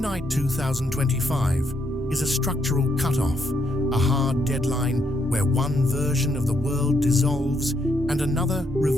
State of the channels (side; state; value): both; normal; correlation 0.75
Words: 2025 is a structural cutoff, a hard deadline where one version of the world dissolves and another